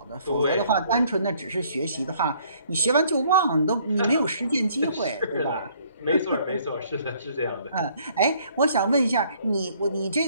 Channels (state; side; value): inverted; both; correlation -0.62